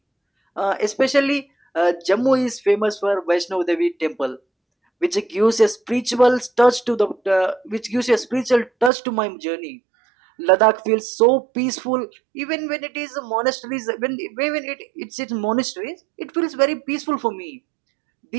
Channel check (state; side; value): drops out; left; at 8.9 s